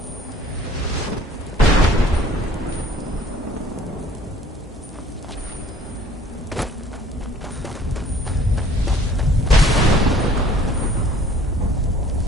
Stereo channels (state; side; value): normal; both; correlation 0.54